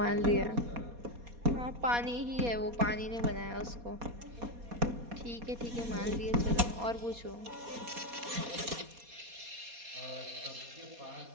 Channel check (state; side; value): late; left; 4.2 ms